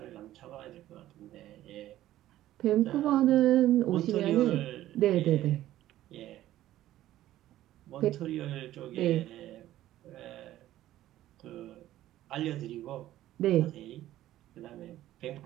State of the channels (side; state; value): left; quieter; 13.9 dB